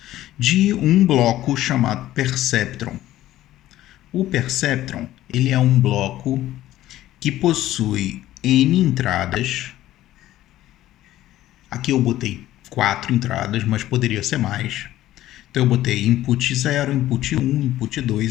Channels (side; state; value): right; quieter; 14.4 dB